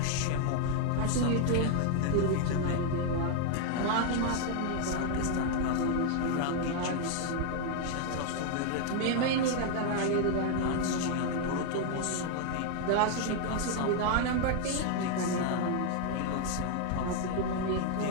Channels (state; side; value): different; both; correlation 0.00